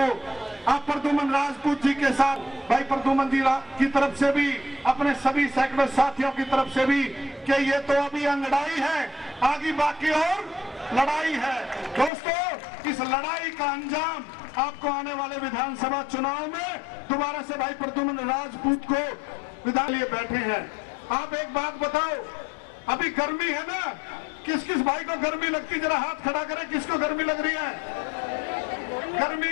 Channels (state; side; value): drops out; right; at 12.1 s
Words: आप प्रद्युमन राजपूत जी के साथ भाई प्रद्युमन जी की तरफ से भी, अपने सभी सैकड़ों साथियों की तरफ से भी कि ये तो अभी अंगड़ाई है, आगे बाकी और लड़ाई है। दोस्तों इस लड़ाई का अंजाम आपको आने वाले विधानसभा चुनाव में दोबारा से भाई प्रद्युमन राजपूत को विधान लिए बैठे हैं। आप एक बात बताओ, अभी गर्मी है ना, किस किस भाई को गर्मी लगती, जरा हाथ खड़ा करें, किसको गर्मी लग रही है?